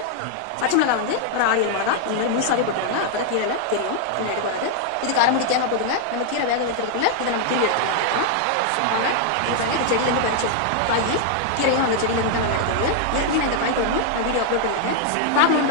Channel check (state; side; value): different; both; correlation 0.00